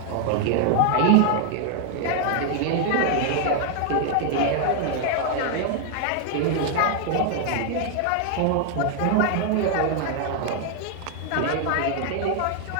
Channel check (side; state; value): both; different; correlation 0.00